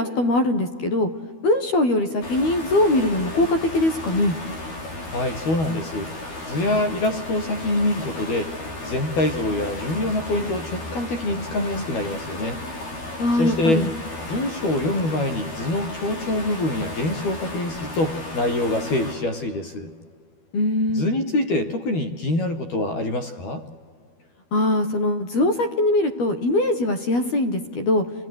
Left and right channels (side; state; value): right; late; 12 ms